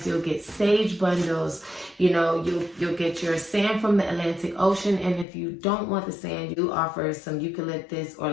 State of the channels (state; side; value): drops out; right; at 5.2 s